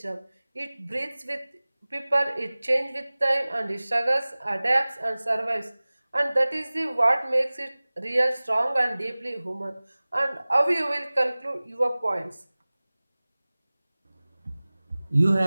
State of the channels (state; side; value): inverted; both; correlation -0.99